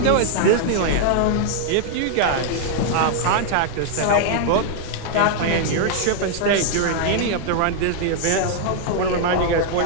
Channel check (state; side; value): different; both; correlation -0.01